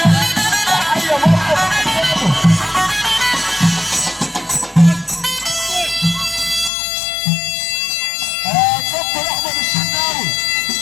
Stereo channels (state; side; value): drops out; right; at 6.7 s